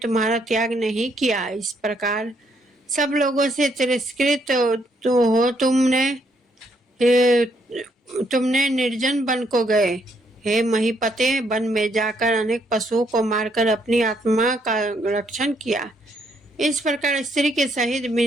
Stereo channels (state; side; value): normal; both; correlation 0.72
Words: त्याग नहीं किया। इस प्रकार सब लोगों से तिरस्कृत तो हो तुमने निर्जन वन को गए। हे महीपते, वन में जाकर अनेक पशुओं को मारकर अपनी आत्मा का रक्षण किया। इस प्रकार स्त्री के सहित